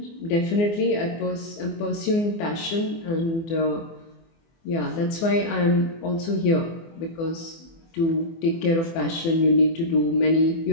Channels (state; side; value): late; right; 24 ms